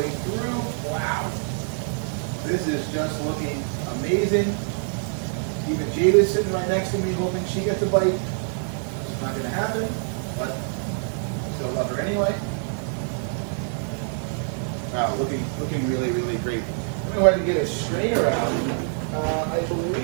through. Wow. This is just looking amazing. Even Jada's sitting right next to me hoping she gets a bite. It's not going to happen, but I still love her anyway. Wow, looking really, really great. I'm going to go ahead and get a strainer out. I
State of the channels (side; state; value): left; silent; 62 dB below the other